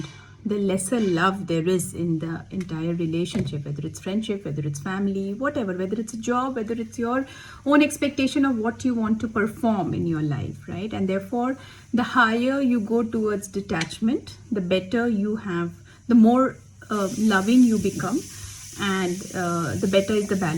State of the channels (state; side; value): identical; both; correlation 1.00